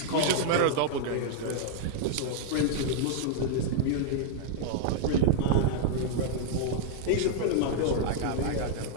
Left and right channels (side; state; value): both; different; correlation -0.01